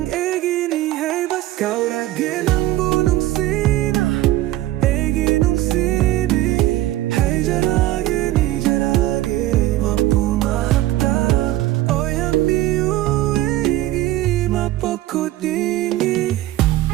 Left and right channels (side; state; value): left; quieter; 15.5 dB